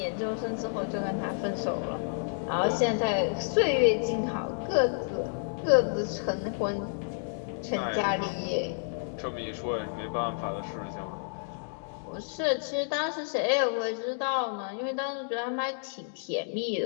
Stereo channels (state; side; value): silent; right; digital silence